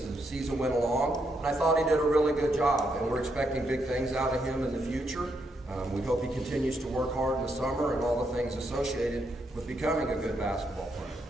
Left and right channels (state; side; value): normal; both; correlation 0.79